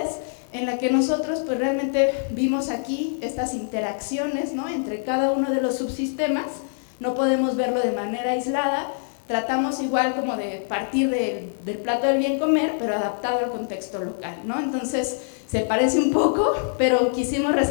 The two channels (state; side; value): silent; right; 62 dB below the other